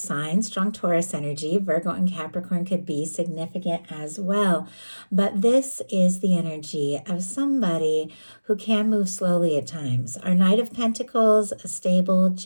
strong Taurus energy. Virgo and Capricorn could be significant as well. But this is the energy of somebody who can move slowly at times. Our Knight of Pentacles, a stable,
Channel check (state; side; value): inverted; both; correlation -1.00